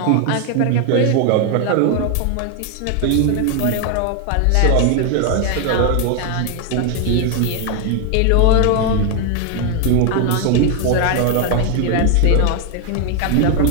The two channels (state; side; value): different; both; correlation 0.01